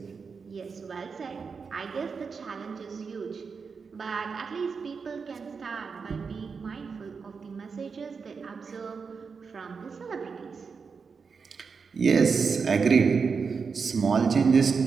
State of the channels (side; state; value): left; quieter; 5.4 dB